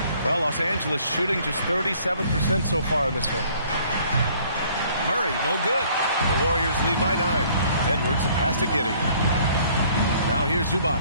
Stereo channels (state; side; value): inverted; both; correlation -0.59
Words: Well, Los Angeles shooting just 37% so far in this one. Murray, no good. The Warriors lead by 9. Edwards, the pass to Giddey. Now here's Zubac.